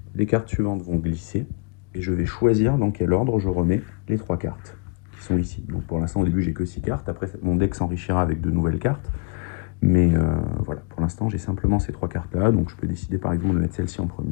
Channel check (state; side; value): quieter; right; 30.5 dB